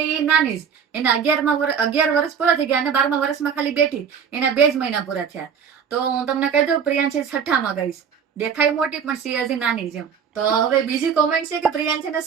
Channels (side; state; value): left; quieter; 7.1 dB